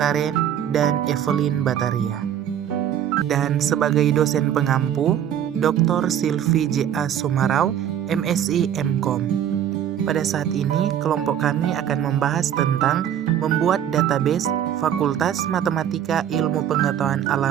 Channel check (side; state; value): left; quieter; 9.9 dB